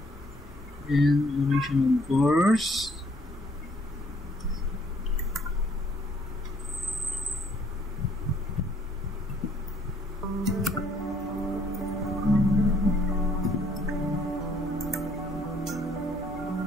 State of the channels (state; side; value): normal; both; correlation 0.64